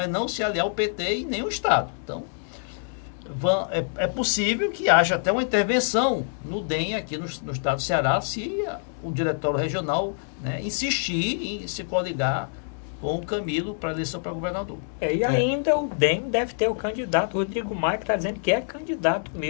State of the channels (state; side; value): silent; right; digital silence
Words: não se aliar ao PT em nenhum estado. Então, é possível que haja até uma intervenção no DEM aqui no estado do Ceará, se o diretório regional, né, insistir em se coligar com o Camilo para a eleição para governador. Ainda o DEM deve ter o candidato Rodrigo Maia, que está dizendo que é candidato